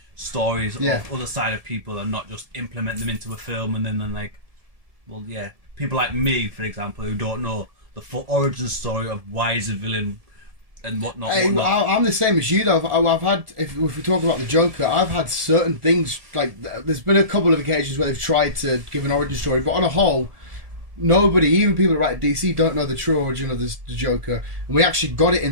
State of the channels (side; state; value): left; late; 1.7 ms